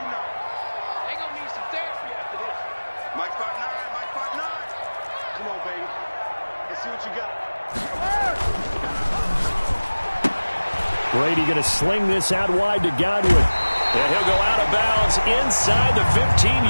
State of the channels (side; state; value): both; inverted; correlation -1.00